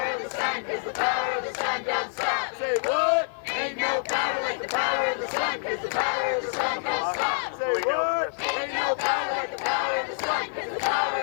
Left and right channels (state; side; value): silent; right; 55 dB below the other